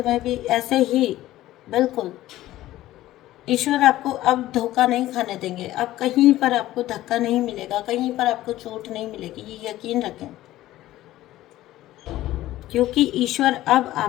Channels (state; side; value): quieter; right; 15.2 dB